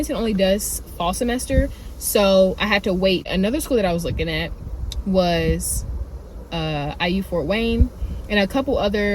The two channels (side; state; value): both; identical; correlation 1.00